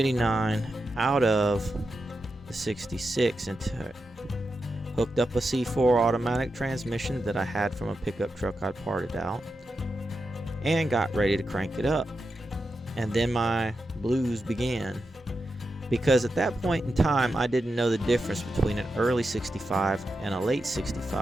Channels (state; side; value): normal; both; correlation 0.88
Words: out of the 66 into it. Hooked up a C4 automatic transmission that I had from a pickup truck I'd parted out, and got ready to crank it up. And then my blues began, because at that point in time I didn't know the difference between an early 65 and a late